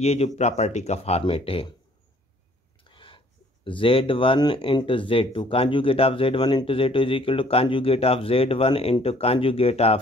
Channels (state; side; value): normal; both; correlation 0.59